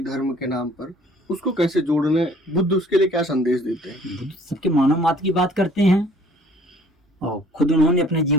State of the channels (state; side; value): normal; both; correlation 0.55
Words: धर्म के नाम पर, उसको कैसे जोड़ने, बुद्ध उसके लिए क्या संदेश देते हैं? बुद्ध सबके मानव मात्र की बात करते हैं और खुद उन्होंने अपने